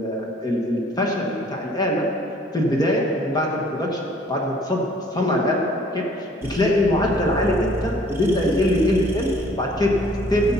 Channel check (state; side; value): normal; both; correlation 0.56